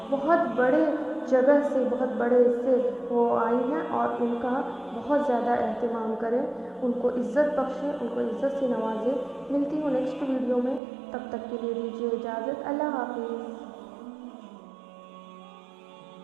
بہت بڑے جگہ سے، بہت بڑے سے وہ آئی ہیں، اور ان کا بہت زیادہ اہتمام کریں، ان کو عزت بخشیں، ان کو عزت سے نوازیں۔ ملتی ہوں نیکسٹ ویڈیو میں، تب تک کے لیے دیجیے اجازت، اللہ حافظ۔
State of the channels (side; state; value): left; drops out; at 10.8 s